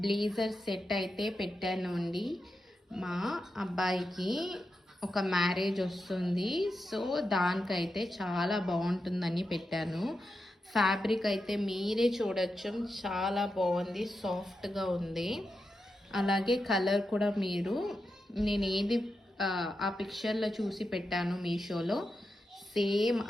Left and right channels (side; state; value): both; normal; correlation 0.89